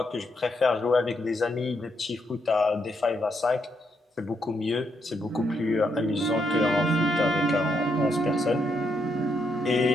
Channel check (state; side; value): normal; both; correlation 0.78